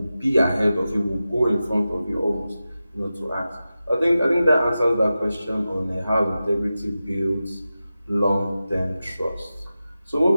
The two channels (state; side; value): inverted; both; correlation -0.93